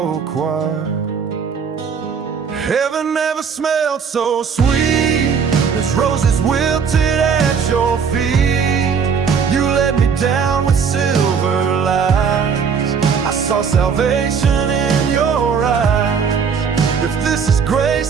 choir. Heaven never smelled so sweet as roses wilted at your feet. You let me down with silver lights. I saw salvation in your eyes. If this is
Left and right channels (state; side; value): quieter; left; 6.4 dB